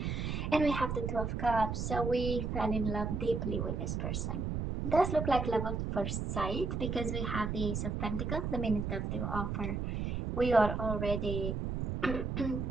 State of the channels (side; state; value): right; noise; rumble, 2 dB below the sound